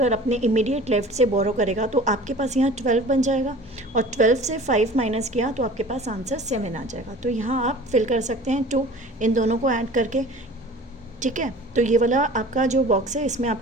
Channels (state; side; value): normal; both; correlation 0.43